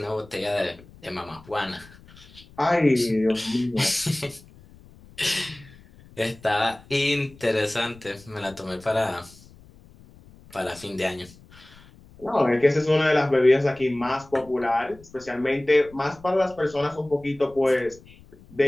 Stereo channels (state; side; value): noise; left; rumble, 23 dB below the sound